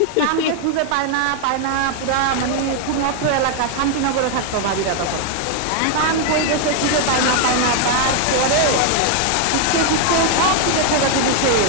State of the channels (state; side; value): different; both; correlation 0.00